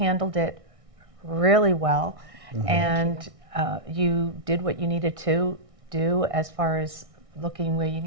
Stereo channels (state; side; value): late; left; 1.6 ms